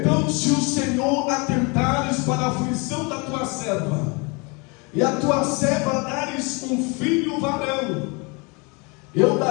se o Senhor atentares para a aflição da tua serva, e a tua serva dares um filho varão, eu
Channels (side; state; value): right; quieter; 30.0 dB